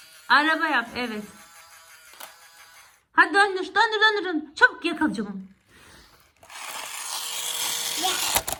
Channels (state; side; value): identical; both; correlation 1.00